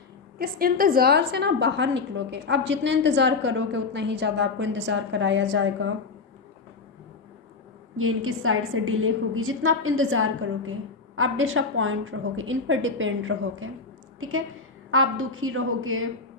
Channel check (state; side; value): quieter; right; 4.4 dB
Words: इस इंतज़ार से ना बाहर निकलोगे, आप जितना इंतज़ार करोगे उतना ही ज़्यादा आपको इंतज़ार कराया जाएगा, ये इनकी साइड से डिले होगी। जितना आप इंतज़ार करोगे आप डिसअपॉइंट रहोगे, इन पर डिपेंड रहोगे। ठीक है, आप दुखी रहोगे,